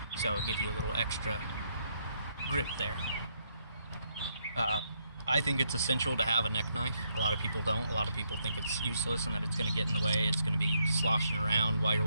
So it gives you a little extra grip there. I think it's essential to have a neck knife. A lot of people don't. A lot of people think it's useless and that it's going to get in the way. It's going to be sloshing around while you're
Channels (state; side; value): inverted; both; correlation -0.76